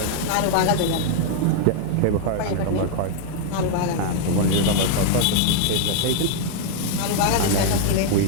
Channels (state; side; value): different; both; correlation 0.00